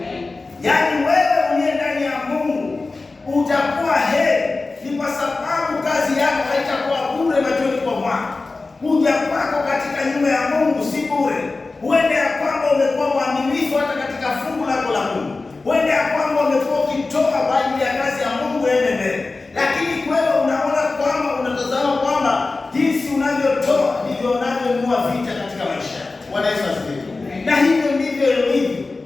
Yaani wewe uliye ndani ya Mungu utakuwa heri, ni kwa sababu kazi yako haitakuwa bure machoni kwa Bwana. Kuja kwako katika nyumba ya Mungu si bure. Huende ya kwamba umekuwa mwaminifu hata katika fungu lako la Mungu. Huende ya kwamba umekuwa ukitoa kwa ajili ya kazi ya Mungu ende mbele. Lakini wewe unaona kwamba unatazama kwamba jinsi unavyotoa ndivyo unavyonunua vita katika maisha. Bwana Yesu asifiwe. Na hivyo ndivyo ilivyo.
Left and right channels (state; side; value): quieter; right; 3.6 dB